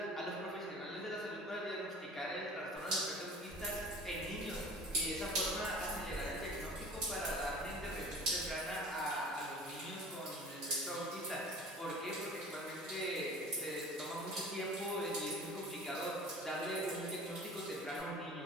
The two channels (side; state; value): both; normal; correlation 0.41